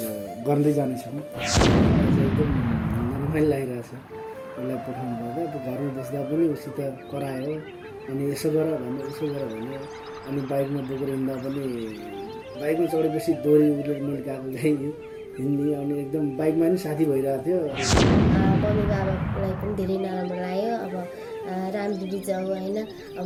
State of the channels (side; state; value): both; identical; correlation 1.00